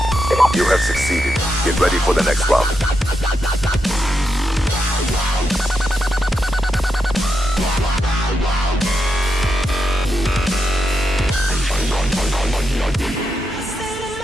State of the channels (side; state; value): both; normal; correlation 0.85